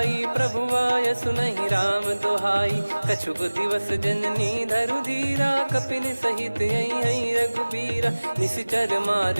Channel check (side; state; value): both; inverted; correlation -1.00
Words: प्रभु आय सुनहि राम दोहाई। कछुक दिवस जननी धरु धीरा, कपिन सहित यही रघुबीरा। निश्चर